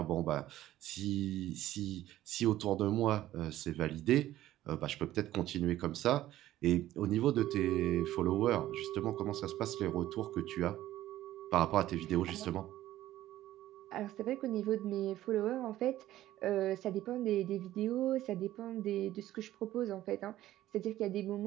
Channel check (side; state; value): left; quieter; 14.2 dB